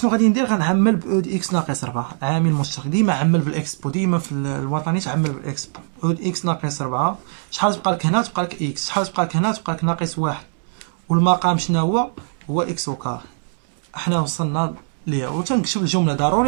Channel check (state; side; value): silent; left; digital silence